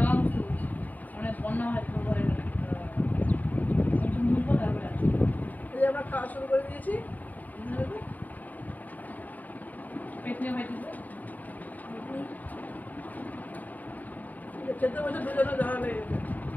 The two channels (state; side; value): late; right; 0.080 ms